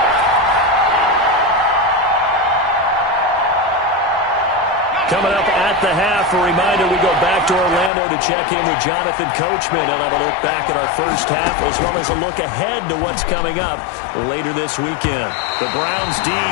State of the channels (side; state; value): right; drops out; at 7.9 s